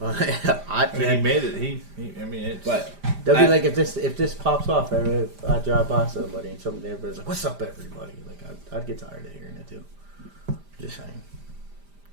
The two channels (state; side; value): late; left; 5.0 ms